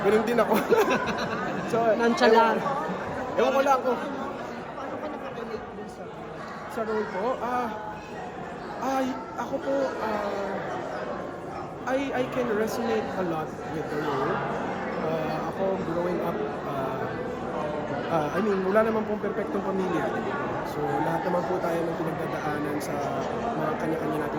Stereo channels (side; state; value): both; identical; correlation 1.00